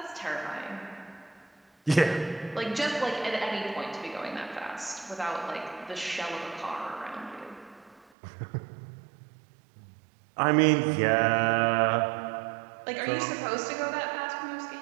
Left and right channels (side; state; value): left; drops out; at 8.1 s